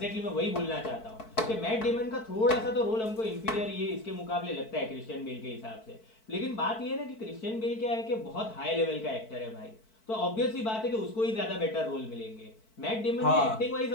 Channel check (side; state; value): right; late; 4.5 ms